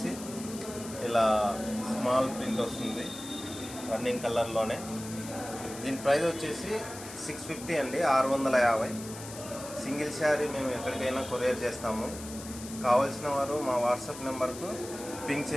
ఇలా స్మాల్ ప్రింట్ వస్తుంది రన్నింగ్ కలర్లోనే. దీని ప్రైస్ వచ్చేసి 650 అండి, 650. సింగిల్ శారీ మేము ఎక్కడికైనా కొరియర్ చేస్తాము. కావాల్సిన వారు మా వాట్సాప్ నెంబర్కు పింక్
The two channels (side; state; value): left; noise; hiss, 13 dB below the sound